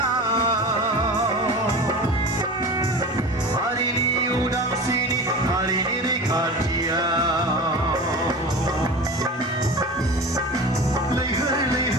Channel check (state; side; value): normal; both; correlation 0.33